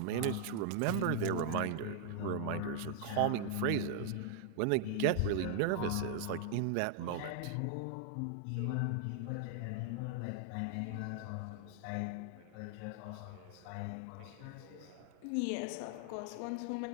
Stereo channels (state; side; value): different; both; correlation 0.00